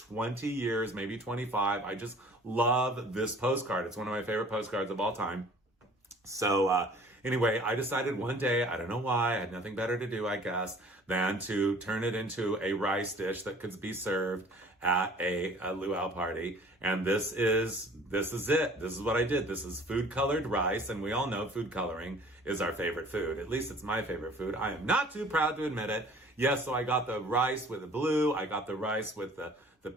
years, maybe 25. I just love this postcard. It's one of my favorite postcards of all time. So anyway, I decided one day, I don't know why, I had nothing better to do, I guess, than to turn it into a rice dish that could be served at a luau party. And this is it. This is what I did. This is food colored rice. And we all know food coloring is our favorite food. At least it's my favorite food. I am not too proud to admit it. Yes, so I got the rice with the blue. I got the rice with the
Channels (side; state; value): both; normal; correlation 0.50